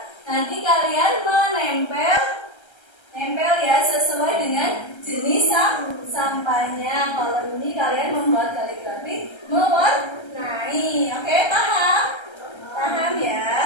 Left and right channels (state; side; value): late; right; 1.3 ms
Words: nanti kalian menempel ya sesuai dengan jenis sampahnya. Kalau ini kalian membuat kaligrafi mewarnai. Oke, paham? Paham